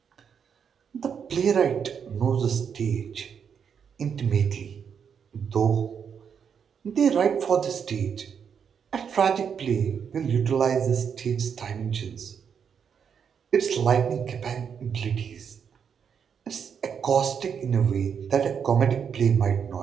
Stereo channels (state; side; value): quieter; left; 7.2 dB